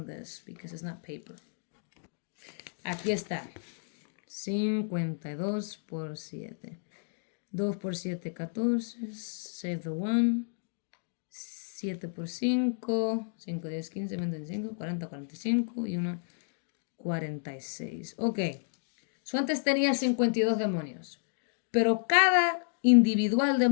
this because it's not paper. Aquí está. 52 por 7. 2 por 7, 14. Save the one. 7 por 5, 5, 10, 15, 20, 25, 40, 45 y 1, 46. Ok. So antes tenía 52 demonios. Pero cada individual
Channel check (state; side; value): silent; right; digital silence